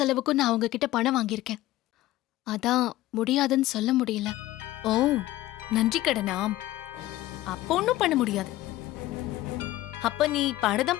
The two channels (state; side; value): quieter; right; 16.0 dB